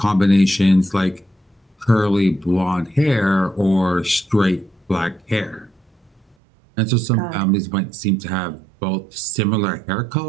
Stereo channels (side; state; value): left; drops out; at 6.4 s